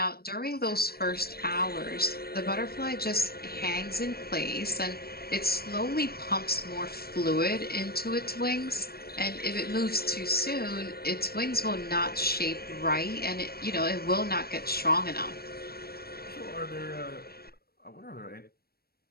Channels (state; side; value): late; right; 0.45 ms